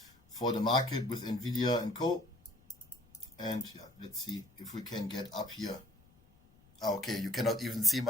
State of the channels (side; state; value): left; noise; rumble, 29 dB below the sound